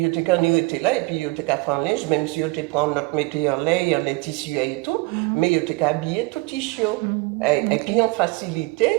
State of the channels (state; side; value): quieter; left; 24.3 dB